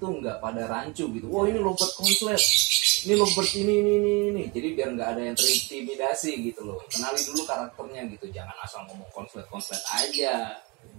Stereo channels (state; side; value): quieter; left; 27.6 dB